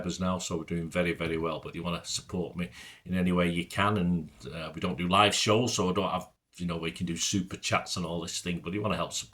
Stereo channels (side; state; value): both; identical; correlation 1.00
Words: now, so we're doing very, very well. But you want to support me in any way you can, and we don't do live shows, so I don't have where you can do super chats and all this thing. But if you want to help